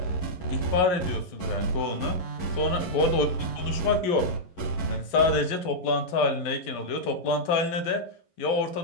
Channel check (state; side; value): late; right; 11 ms